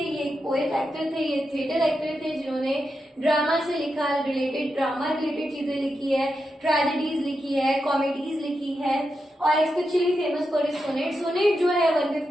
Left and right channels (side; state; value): both; normal; correlation 0.87